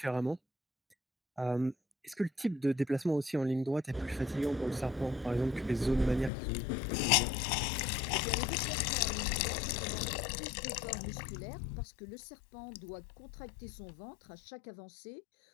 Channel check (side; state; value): right; drops out; at 6.3 s